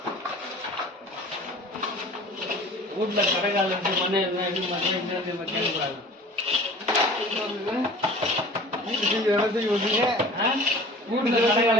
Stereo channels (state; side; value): normal; both; correlation 0.43